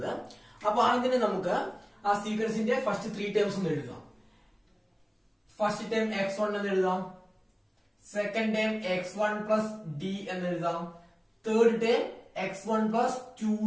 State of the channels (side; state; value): both; identical; correlation 1.00